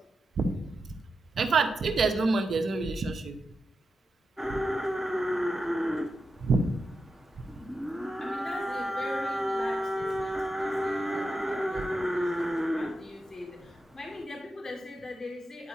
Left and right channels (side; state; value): both; normal; correlation 0.89